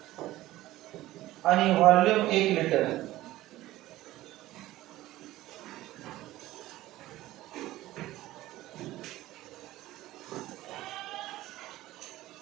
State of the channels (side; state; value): left; quieter; 16.2 dB